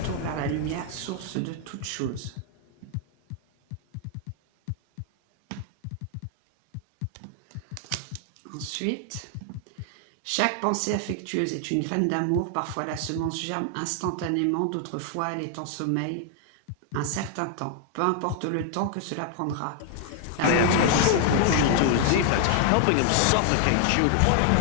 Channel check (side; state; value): both; different; correlation 0.00